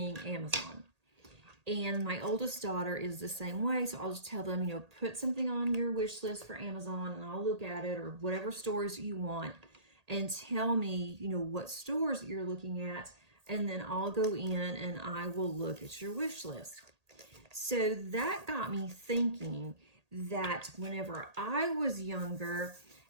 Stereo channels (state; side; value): late; left; 1.8 ms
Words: Amazon. And my oldest daughter is the same way, so I'll just tell them, put something on your wish list for Amazon, and I'll look at it, or whatever stores you want, and tell me, what stores you're looking at, and then I'll go in and I will look at your wish list. So that got me thinking that whenever I was younger,